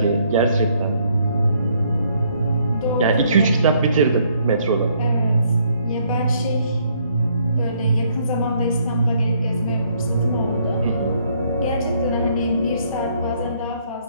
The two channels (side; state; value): both; inverted; correlation -0.68